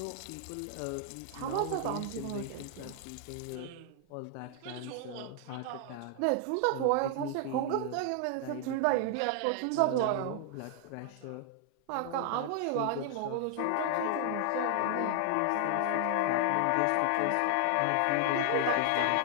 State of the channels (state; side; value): different; both; correlation 0.00